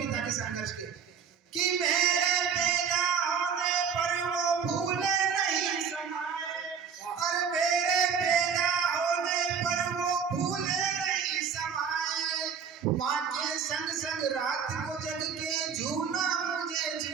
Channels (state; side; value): quieter; left; 6.8 dB